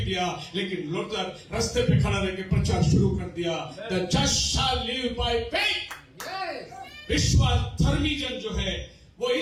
दिया, लेकिन लूथर रास्ते पे खड़ा रह के प्रचार शुरू कर दिया। The just shall live by faith. विश्वास धर्मी जन जो है वो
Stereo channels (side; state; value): both; identical; correlation 1.00